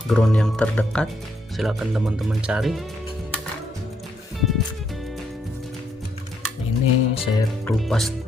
Ground yang terdekat silahkan teman-teman cari. Ini saya kelupas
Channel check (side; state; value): both; normal; correlation 0.75